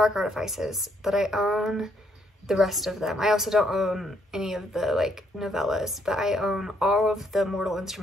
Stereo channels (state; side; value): normal; both; correlation 0.71